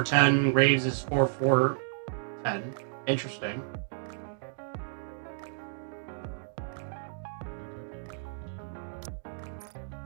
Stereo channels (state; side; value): silent; left; digital silence